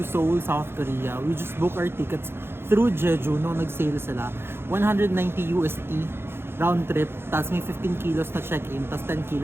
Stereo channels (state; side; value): late; left; 0.11 ms